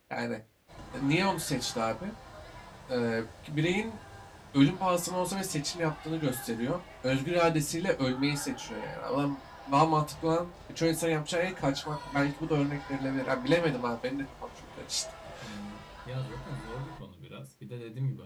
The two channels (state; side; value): identical; both; correlation 1.00